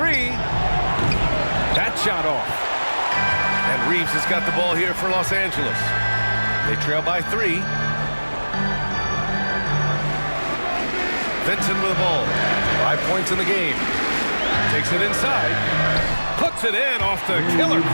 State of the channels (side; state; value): both; inverted; correlation -1.00